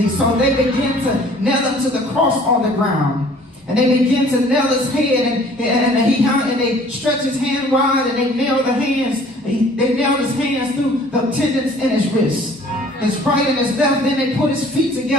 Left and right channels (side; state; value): both; normal; correlation 0.53